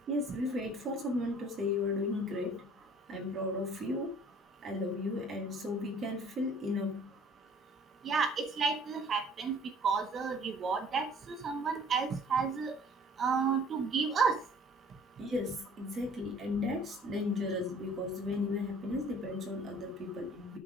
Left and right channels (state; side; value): normal; both; correlation 0.53